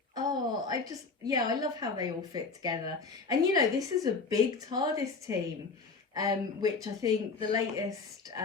Oh, I love how they all fit together. And this is a big TARDIS team, which I think the latest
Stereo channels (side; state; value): right; quieter; 4.4 dB